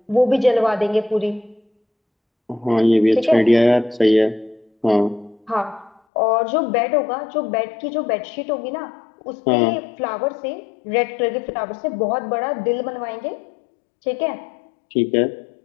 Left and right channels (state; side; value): drops out; right; at 6.0 s